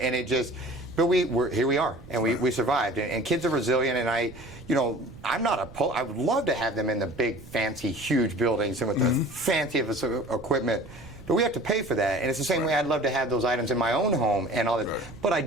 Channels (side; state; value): right; noise; rumble, 18 dB below the sound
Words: just. But we're here. We are, and we survived. And kids are resilient. And I'm not I would love to have them in the big, fancy, huge buildings and with the fanciest equipment. But we have to pay for that. And it's the same way I'd love to have those items in my own home and all that. Right. But I